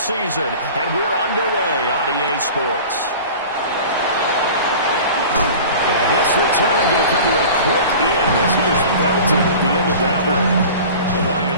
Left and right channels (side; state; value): both; inverted; correlation -0.39